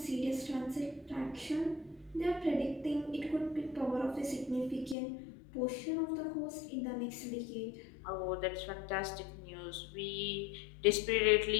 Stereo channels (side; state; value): right; drops out; at 5.0 s